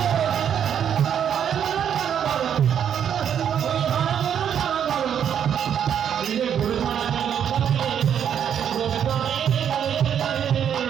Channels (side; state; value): left; quieter; 8.8 dB